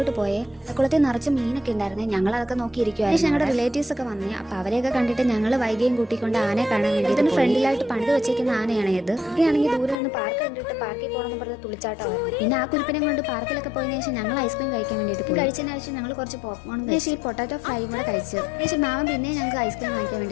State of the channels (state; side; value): drops out; right; at 10.0 s